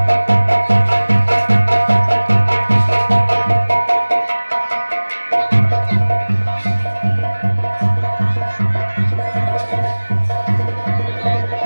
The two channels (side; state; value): both; inverted; correlation -1.00